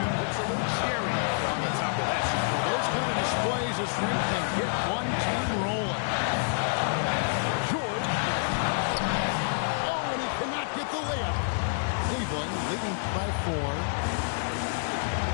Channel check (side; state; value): right; silent; digital silence